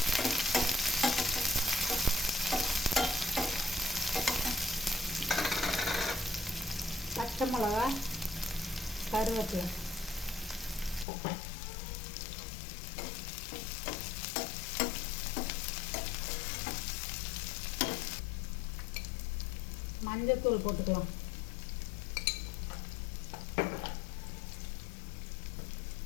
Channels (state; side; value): drops out; right; at 11.1 s